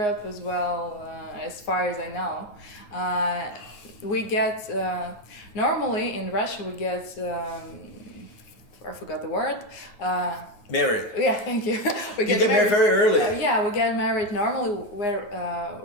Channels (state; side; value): late; right; 9.6 ms